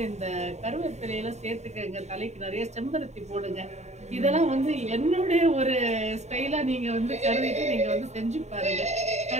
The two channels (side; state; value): left; late; 0.32 ms